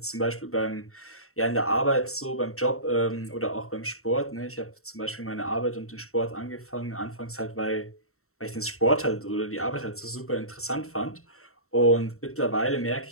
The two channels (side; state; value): right; late; 0.63 ms